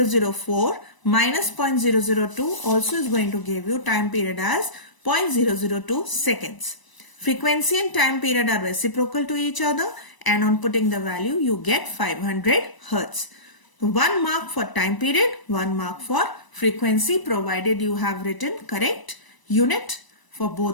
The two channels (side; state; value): right; late; 1.0 ms